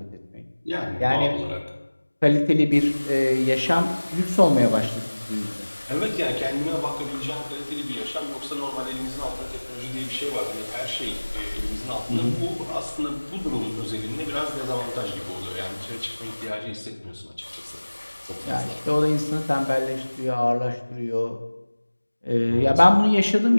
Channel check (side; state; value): both; inverted; correlation -1.00